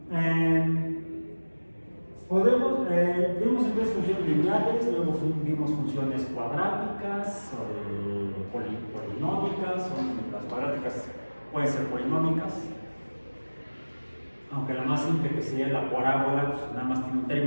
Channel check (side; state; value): both; inverted; correlation -1.00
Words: Vimos entonces funciones lineales, luego vimos funciones cuadráticas, polinómicas, las cuadráticas pueden ser polinómicas, aunque la más simple que sería la parábola, pues nada más tiene un